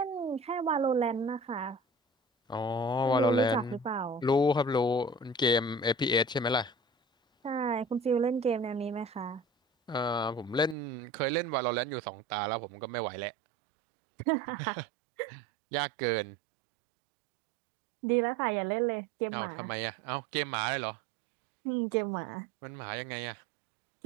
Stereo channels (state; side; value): drops out; left; at 10.8 s